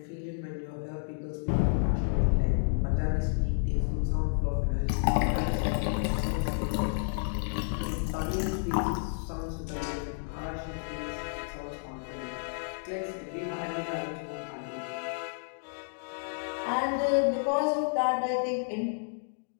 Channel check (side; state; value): right; silent; digital silence